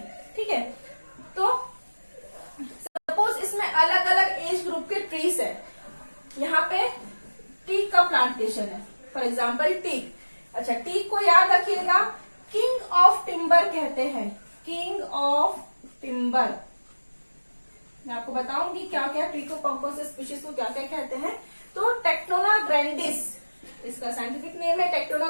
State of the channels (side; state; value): both; inverted; correlation -1.00